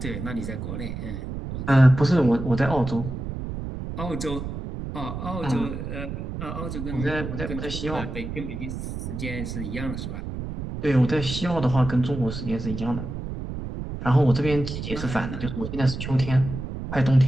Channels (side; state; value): right; noise; rumble, 6 dB below the sound